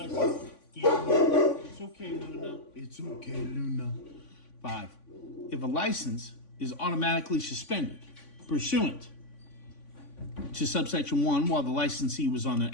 It's okay, Luna. It's okay, Luna. 5. If a license is automatically suspended pursuant to subsection 1 while the licensee was on an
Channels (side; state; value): right; late; 3.5 ms